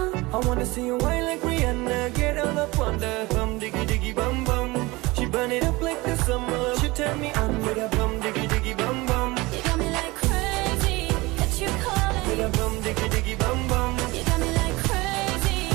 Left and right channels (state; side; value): quieter; left; 22.2 dB